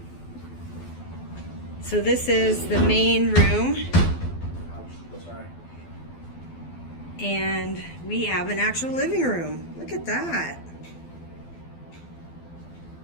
So this is the main room. Sorry. And we have an actual living room. Look at that.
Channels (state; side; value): late; right; 12 ms